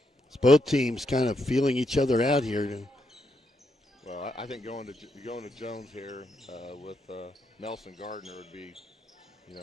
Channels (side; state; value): both; normal; correlation 0.80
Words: It's both teams kind of feeling each other out here. Well, I think going to Jones here with Nelson Gardner would be, a